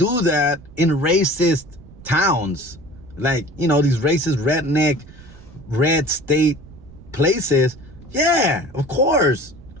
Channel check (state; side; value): noise; right; rumble, 20 dB below the sound